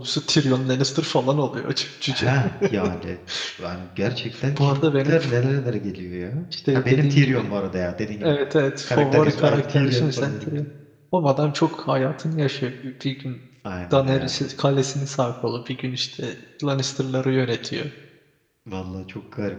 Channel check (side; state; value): both; identical; correlation 1.00